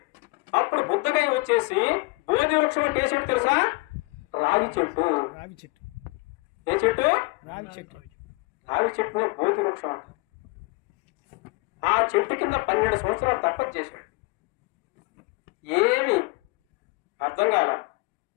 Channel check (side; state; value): right; quieter; 26.4 dB